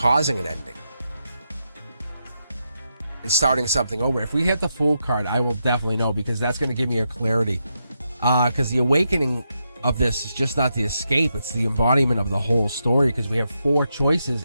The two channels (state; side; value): inverted; both; correlation -0.84